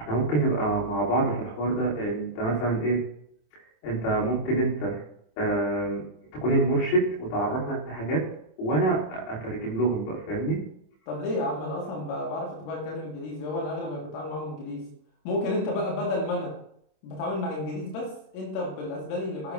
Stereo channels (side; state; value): right; late; 26 ms